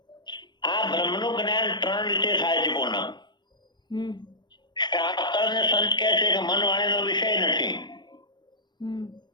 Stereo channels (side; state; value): right; late; 0.21 ms